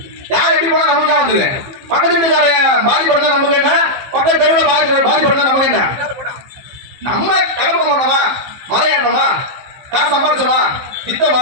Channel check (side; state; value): left; late; 15 ms